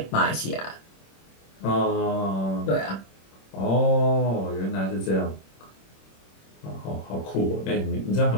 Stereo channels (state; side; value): late; right; 26 ms